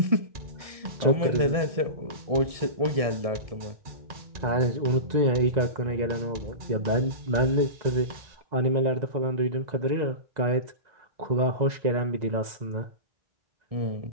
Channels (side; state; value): left; late; 1.9 ms